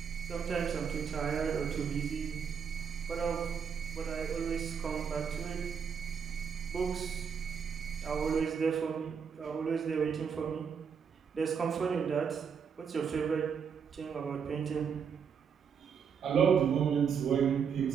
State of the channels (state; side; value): quieter; left; 6.8 dB